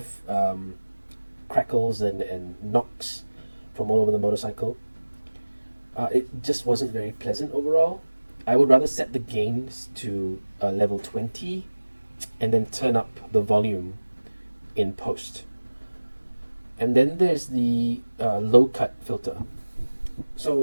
crackles and knocks from all over the motorcycle. It just wasn't very pleasant overall. I would rather set the gains to level 20 and then turn up the volume in post. And then there's the Lowcut filter.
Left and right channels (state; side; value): inverted; both; correlation -1.00